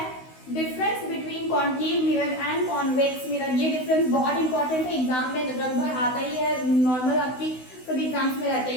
difference between concave mirror and convex mirror. ये डिफरेंस बहुत इंपॉर्टेंट है, एग्जाम में लगभग आता ही है, नॉर्मल आपकी सभी एग्जाम्स में रहते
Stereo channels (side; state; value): right; late; 16 ms